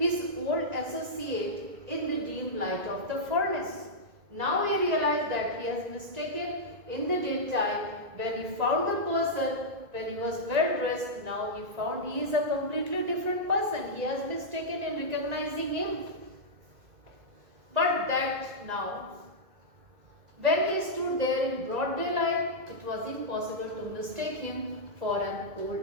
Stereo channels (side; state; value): left; late; 2.0 ms